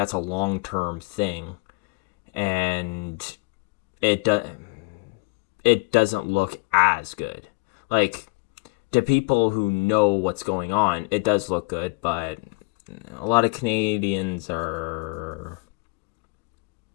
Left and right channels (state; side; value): quieter; right; 31.8 dB